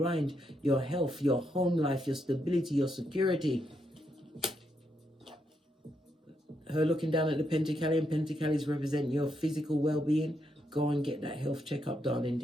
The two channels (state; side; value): normal; both; correlation 0.80